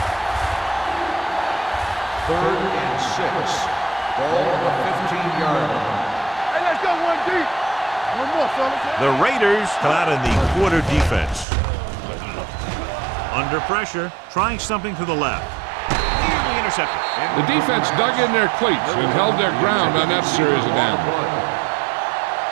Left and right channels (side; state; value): left; drops out; at 11.5 s